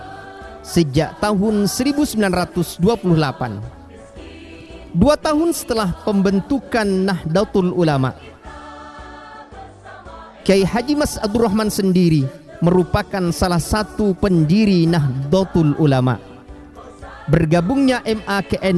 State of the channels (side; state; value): both; identical; correlation 1.00